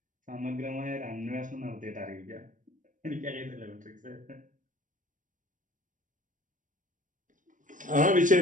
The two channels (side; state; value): left; late; 0.38 ms